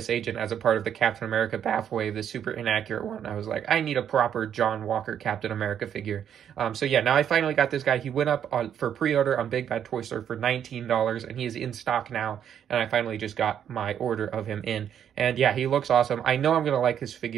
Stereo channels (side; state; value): left; quieter; 9.1 dB